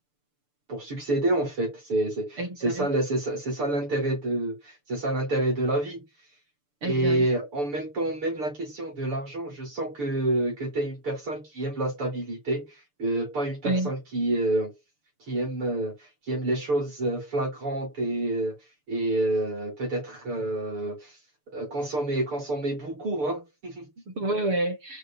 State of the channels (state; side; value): late; left; 6.8 ms